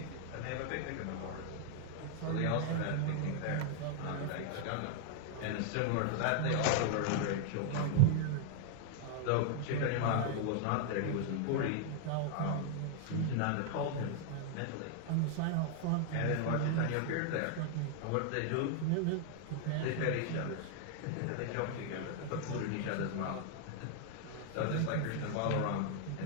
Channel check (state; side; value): different; both; correlation 0.00